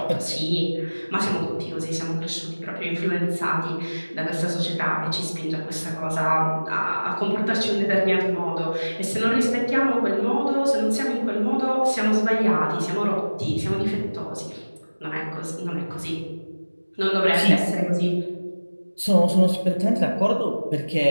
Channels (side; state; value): both; inverted; correlation -1.00